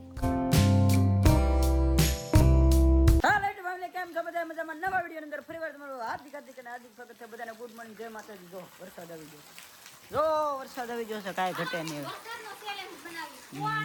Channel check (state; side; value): identical; both; correlation 1.00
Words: કેમ છો બધા મજામાં? નવા વિડીયો અંદર ફરીવાર તમારું હાર્દિક સ્વાગત છે બધાને. ગુડ મોર્નિંગ, જય માતાજી. જો વરસાદ આવી ગયો, જો વરસાદ આવી ગયો છે, કાંઈ ઘટે નહીં.